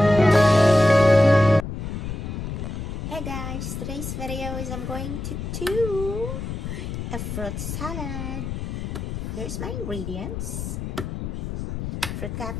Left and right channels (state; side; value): noise; left; rumble, 5 dB below the sound